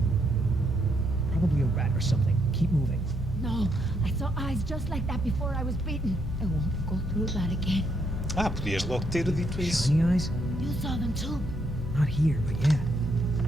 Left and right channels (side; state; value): both; normal; correlation 0.75